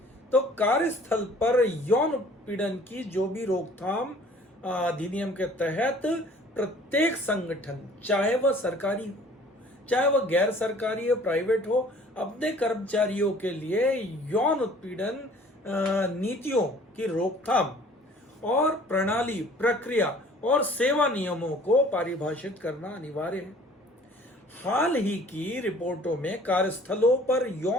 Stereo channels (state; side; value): normal; both; correlation 0.52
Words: तो कार्यस्थल पर यौन उत्पीड़न की जो भी रोकथाम अधिनियम के तहत प्रत्येक संगठन, चाहे वह सरकारी हो चाहे वह गैर सरकारी हो, प्राइवेट हो, अपने कर्मचारियों के लिए यौन उत्पीड़न नीतियों की रोकथाम और प्रणाली, प्रक्रिया और सेवा नियमों को परिभाषित करना अनिवार्य है। हाल ही की रिपोर्टों में कार्यस्थलों पर